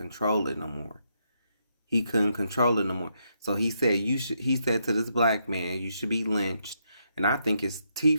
it no more. He couldn't control it no more. So he said he said to this black man, you should be lynched. And I think his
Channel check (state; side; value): inverted; both; correlation -0.78